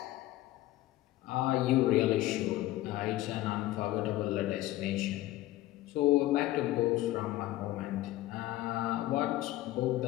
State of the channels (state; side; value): quieter; right; 15.9 dB